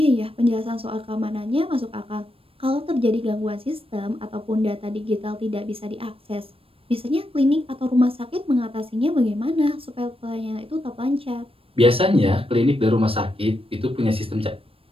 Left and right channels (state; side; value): late; left; 0.27 ms